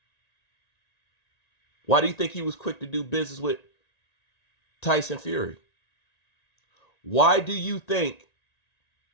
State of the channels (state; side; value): late; right; 1.9 ms